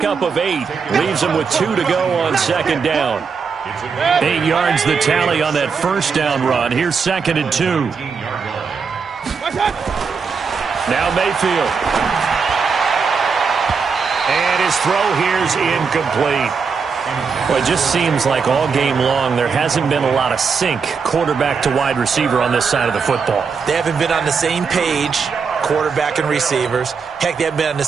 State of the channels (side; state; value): left; quieter; 5.6 dB